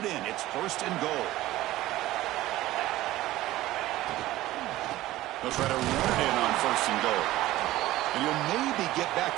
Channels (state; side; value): quieter; left; 16.3 dB